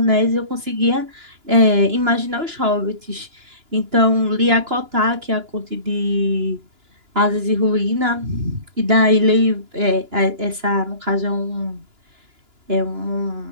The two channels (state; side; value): late; left; 2.9 ms